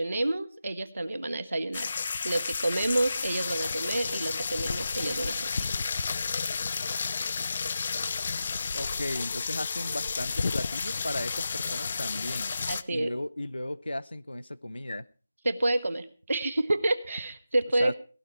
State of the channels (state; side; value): inverted; both; correlation -0.91